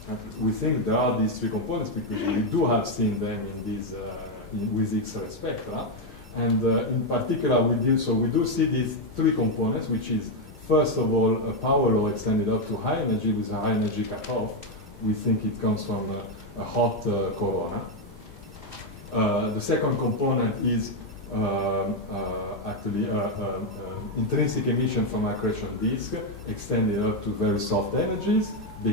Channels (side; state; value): both; normal; correlation 0.04